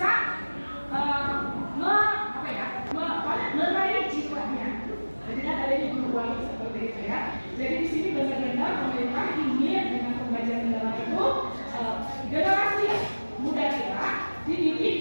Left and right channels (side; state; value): both; inverted; correlation -1.00